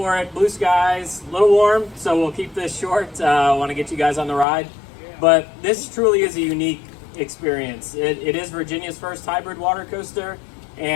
it. Blue skies, a little warm, so we'll keep this short. I want to get you guys on the ride, but this truly is a unique experience. It is Virginia's first hybrid water coaster,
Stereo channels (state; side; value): drops out; right; at 4.5 s